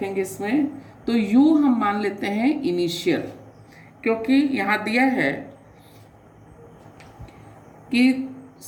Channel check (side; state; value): both; identical; correlation 1.00